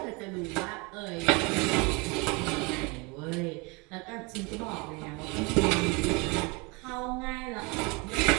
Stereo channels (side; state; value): left; quieter; 28.5 dB